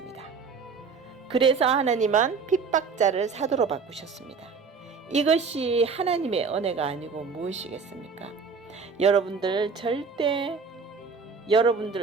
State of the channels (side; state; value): left; quieter; 5.2 dB